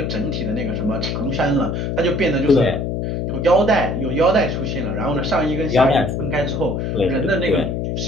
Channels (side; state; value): left; noise; hum, 2 dB below the sound